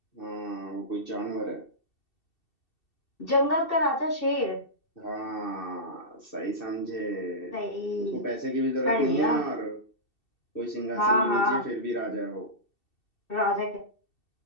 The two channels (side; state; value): right; late; 2.7 ms